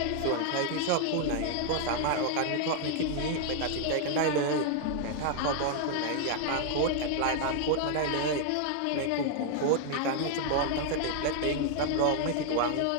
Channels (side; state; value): both; different; correlation 0.00